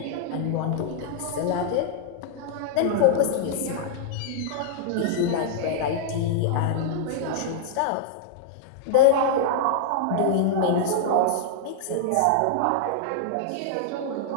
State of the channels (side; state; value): both; different; correlation -0.01